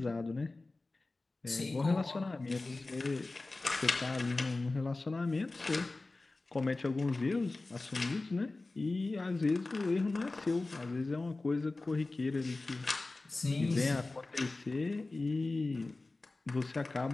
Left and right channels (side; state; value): right; quieter; 3.2 dB